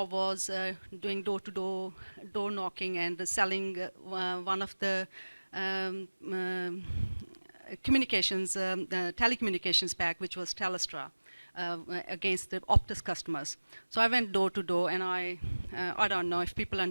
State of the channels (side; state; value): both; inverted; correlation -1.00